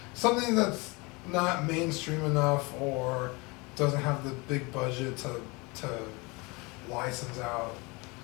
something that's not mainstream enough or doesn't have the big budget to license out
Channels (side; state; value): right; quieter; 26.8 dB